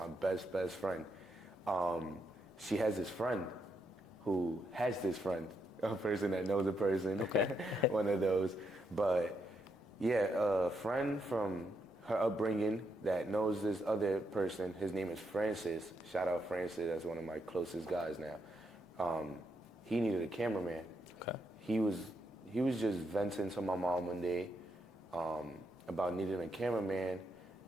best friend. She has this friend who has this friend, a person that knows a person, one of those. But yeah, a friend from her upbringing that knows this other person. His name is Francis. Shout out Francis. That's one of my closest guys now. He needed a cameraman. Okay. He was just venting to my mom one day about needing a cameraman.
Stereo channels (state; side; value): normal; both; correlation 0.80